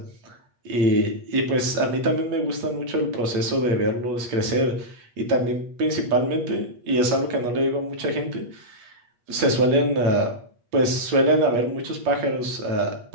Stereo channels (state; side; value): late; left; 8.4 ms